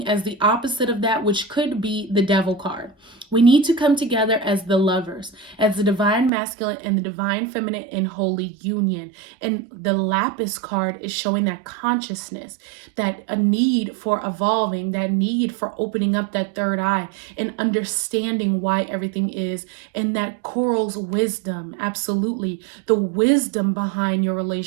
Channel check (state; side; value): drops out; left; at 6.3 s